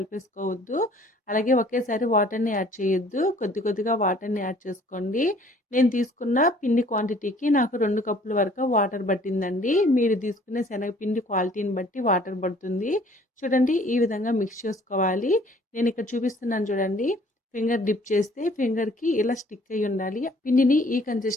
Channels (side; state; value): both; normal; correlation 0.56